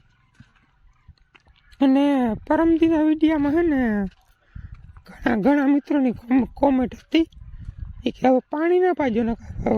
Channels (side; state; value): both; identical; correlation 1.00